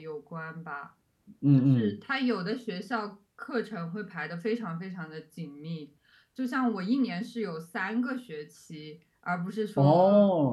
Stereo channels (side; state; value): both; identical; correlation 1.00